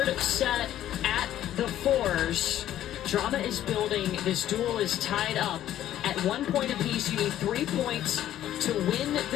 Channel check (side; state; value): right; quieter; 12.2 dB